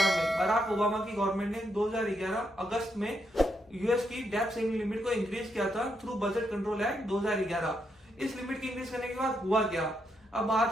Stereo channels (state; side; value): normal; both; correlation 0.79